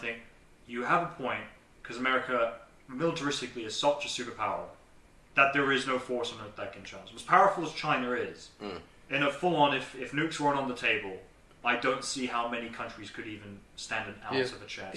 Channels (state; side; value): identical; both; correlation 1.00